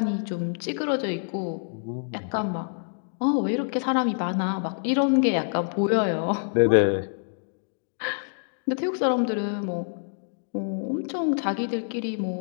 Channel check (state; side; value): silent; right; digital silence